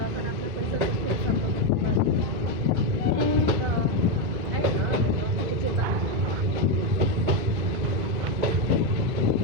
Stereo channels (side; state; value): left; late; 2.4 ms